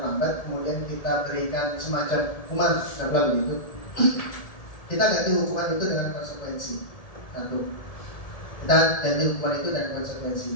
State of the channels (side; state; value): right; late; 1.7 ms